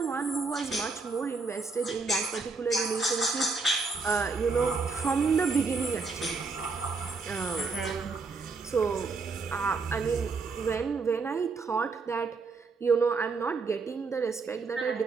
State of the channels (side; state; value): left; quieter; 4.3 dB